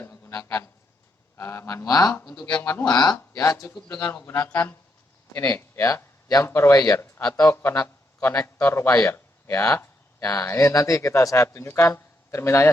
menggunakan manual. Untuk yang manual ya, cukup dengan menggunakan ini ya, jumper wire atau konektor wire ya. Nah, ini nanti saya tunjukkan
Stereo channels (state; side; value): normal; both; correlation 0.78